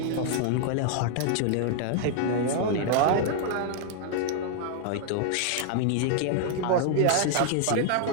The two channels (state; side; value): different; both; correlation 0.00